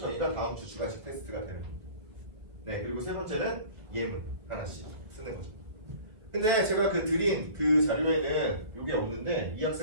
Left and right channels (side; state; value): left; late; 1.7 ms